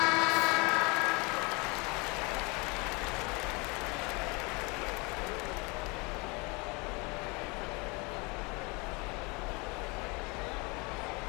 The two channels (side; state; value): right; quieter; 28.1 dB